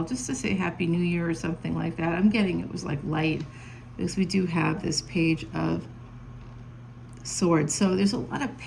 just to say Happy New Year or something like that. I'm getting it was like light, because we do have this Page of Swords. So there's a lot of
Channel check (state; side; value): identical; both; correlation 1.00